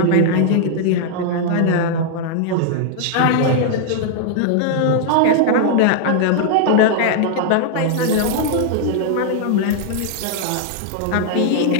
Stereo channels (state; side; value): different; both; correlation -0.01